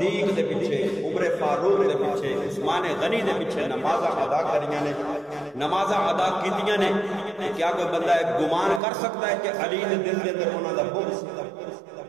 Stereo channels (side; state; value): left; drops out; at 8.8 s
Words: دے پیچھے، عمر فاروق دے پیچھے، عثمان غنی دے پیچھے نمازاں ادا کریاں نے، نمازاں ادا کیتیاں نے۔ کیا کوئی بندہ گمان کر سکتا ہے کہ علی دے دل دے اندر انہاں دا بغض؟